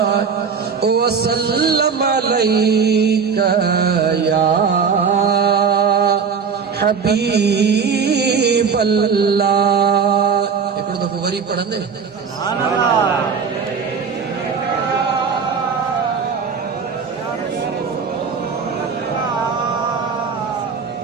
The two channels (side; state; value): left; quieter; 6.0 dB